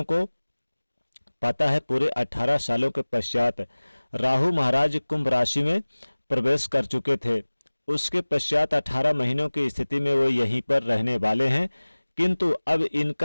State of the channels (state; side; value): inverted; both; correlation -1.00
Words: को पता है पूरे 18 सालों के पश्चात राहु महाराज कुंभ राशि में प्रवेश कर चुके थे। उसके पश्चात 18 महीनों की स्थिति में वो यहीं पर रहने वाले हैं, किंतु अब